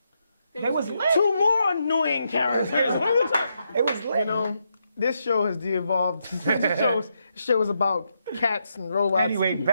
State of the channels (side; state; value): both; inverted; correlation -0.81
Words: They was lit. 2 more annoying characters. It was lit. You know, this show has de-evolved. This show is about cats and robots. Anyway,